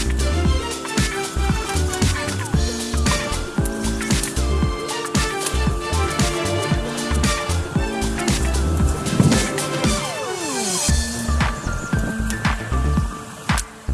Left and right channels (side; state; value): both; identical; correlation 1.00